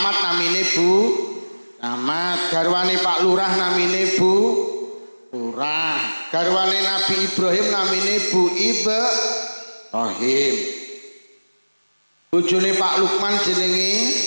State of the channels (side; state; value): both; inverted; correlation -1.00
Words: namine Bu Camat, garwane Pak Lurah namine Bu Lurah, garwane Nabi Ibrahim namine Bu Ibrahim. Bojone Pak Lukman jenenge